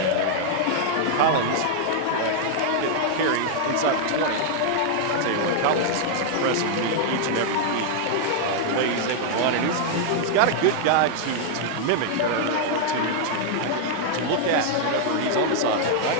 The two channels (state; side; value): different; both; correlation -0.01